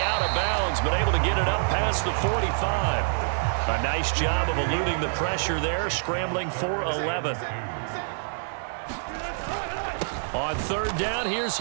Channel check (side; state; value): left; silent; digital silence